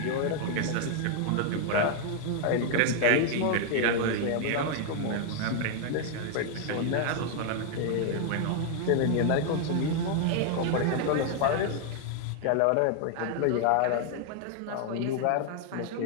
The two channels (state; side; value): different; both; correlation 0.00